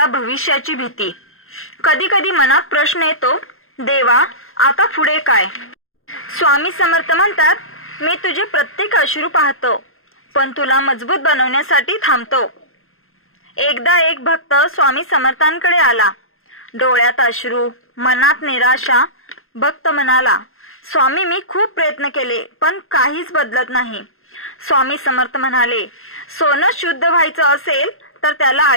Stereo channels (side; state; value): right; late; 0.61 ms